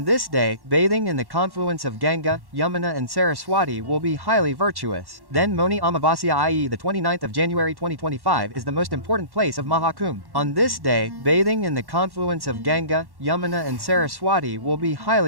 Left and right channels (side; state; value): left; late; 1.1 ms